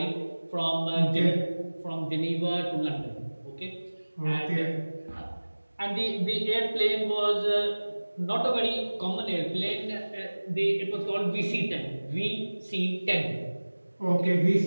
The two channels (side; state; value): both; inverted; correlation -1.00